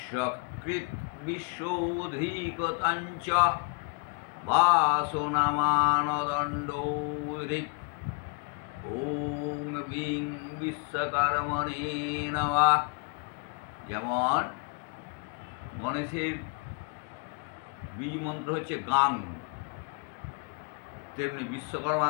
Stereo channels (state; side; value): quieter; right; 34.5 dB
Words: বিশ্বধিকতঞ্চ বাসনামানদণ্ডৌরিক ওং বিং বিশ্বকর্মণে নমঃ। যেমন গণেশের বীজ মন্ত্র হচ্ছে গাং, তেমনি